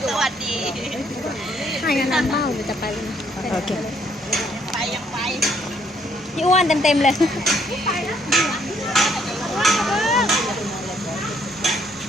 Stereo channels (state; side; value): normal; both; correlation 0.68